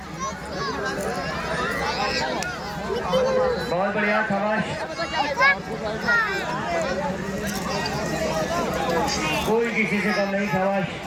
बहुत बढ़िया, शाबाश। कोई किसी से कम नहीं, शाबाश,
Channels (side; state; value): both; identical; correlation 1.00